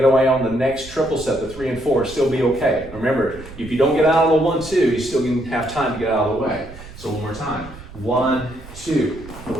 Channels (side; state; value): right; noise; rumble, 16 dB below the sound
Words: away on the next triple step, the 3 and 4, still be okay. Remember, if you don't get out of the 1, 2, you still can have time to get out of the way. So one more time. 1, 2,